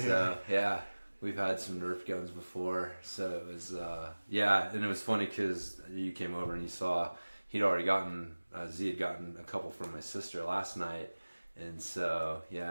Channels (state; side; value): inverted; both; correlation -1.00